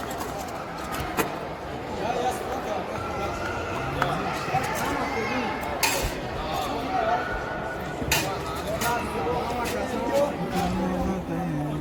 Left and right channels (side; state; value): both; identical; correlation 1.00